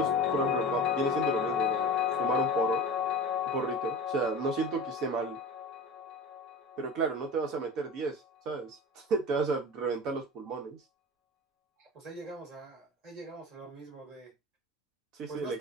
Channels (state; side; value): normal; both; correlation 0.33